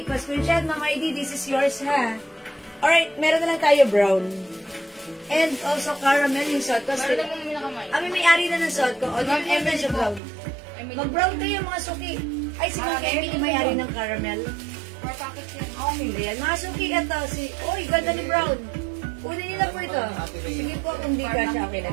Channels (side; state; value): left; drops out; at 10.2 s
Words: pa-screenshot, Ma'am Heidi, this is yours, ha? Alright, meron na lang tayo brown. And also caramel yung suot ko. Meron naman yung nakamay. Kami may-ari na ng suot ko. O, yung siya brown. Mag-brown kayo, mga suki. Ay, si Ma'am Emily may-ari ng caramel. 4 packets yan. Okay, ayan. Mga suki, ito. Uy, ganda ni brown. Kunin nila po ito. Sige po, kung di ka siya, okay